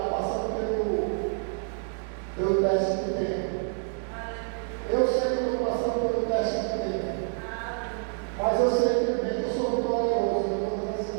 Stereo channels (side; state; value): left; silent; digital silence